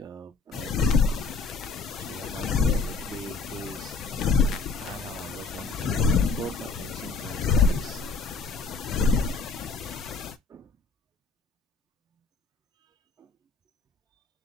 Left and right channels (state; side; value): quieter; right; 4.3 dB